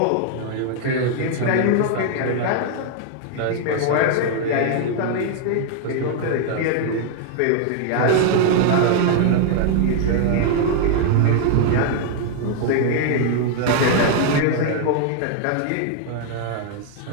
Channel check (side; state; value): both; different; correlation 0.00